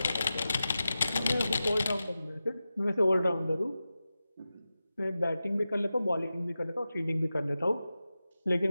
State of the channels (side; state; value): both; inverted; correlation -0.93